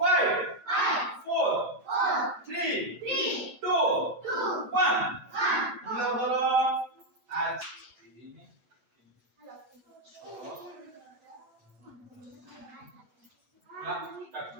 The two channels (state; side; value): late; left; 9.0 ms